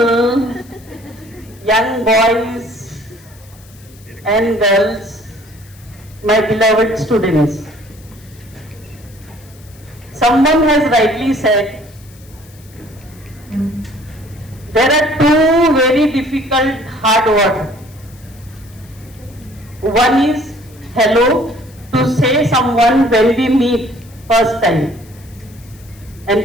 young boys and girls, my beloved students. Someone has rightly said, there are two very difficult hard words. One is hello, to say someone when we meet first time.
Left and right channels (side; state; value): left; noise; hiss, 26 dB below the sound